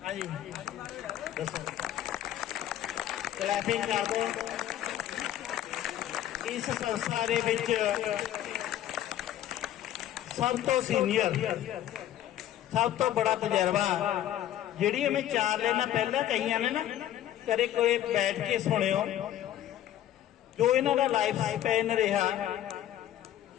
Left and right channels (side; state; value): right; quieter; 12.2 dB